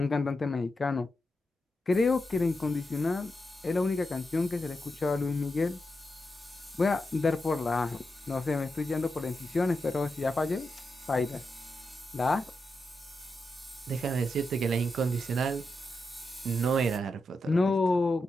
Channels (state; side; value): normal; both; correlation 0.87